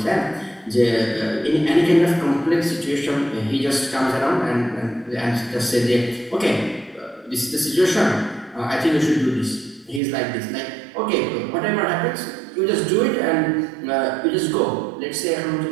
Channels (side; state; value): left; drops out; at 10.0 s